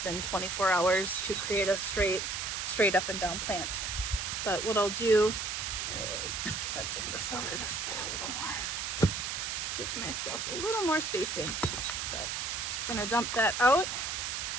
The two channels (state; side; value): noise; right; hiss, 2 dB below the sound